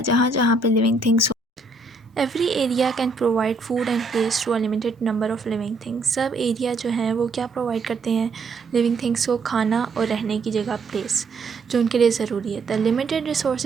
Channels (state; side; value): quieter; left; 3.6 dB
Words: जहाँ जहाँ पे living things, every area can provide food and place to a limited number of living things. सब area जो हैं वो क्या provide करते हैं, लिविंग थिंग्स को खाना और रहने की जगह, प्लेस जो उनके लिए ज़रूरी है। The limited